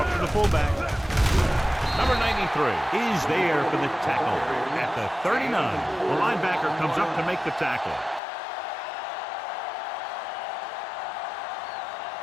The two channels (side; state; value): right; drops out; at 8.2 s